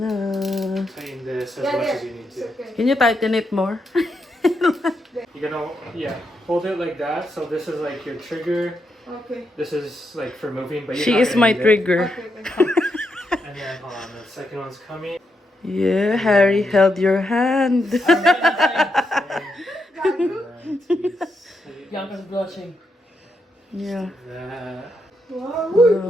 Na. tighten this as much as you need to. Can you tighten it more? You're gonna hold it like that. So this is like your trigger. Okay. This is like for moving, but you're She not is gonna my need it. trigger. And then hold on, the second one's coming. Yeah, Harry held your hand. Bianca's blushing. Yeah. That. Wow,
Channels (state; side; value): normal; both; correlation 0.82